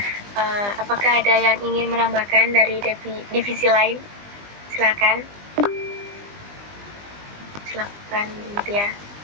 Apakah ada yang ingin menambahkan dari divisi lain? Silakan. Silakan, Bu Tia.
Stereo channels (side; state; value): left; late; 20 ms